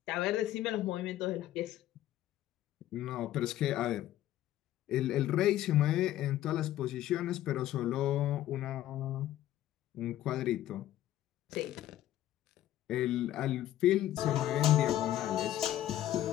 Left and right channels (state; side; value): quieter; right; 13.3 dB